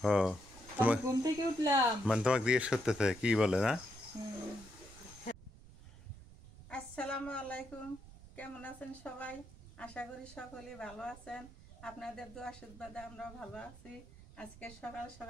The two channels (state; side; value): noise; right; rumble, 19 dB below the sound